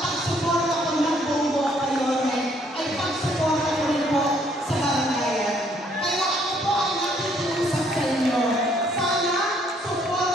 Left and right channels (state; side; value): normal; both; correlation 0.66